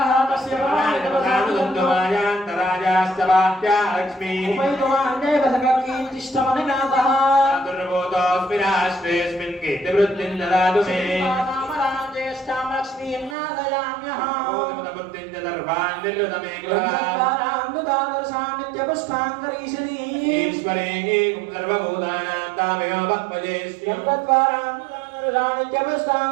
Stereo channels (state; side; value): drops out; left; at 13.4 s